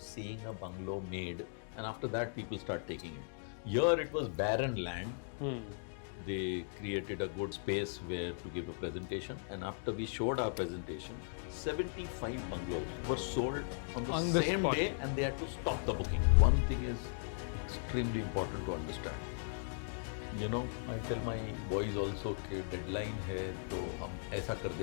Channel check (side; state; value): right; silent; digital silence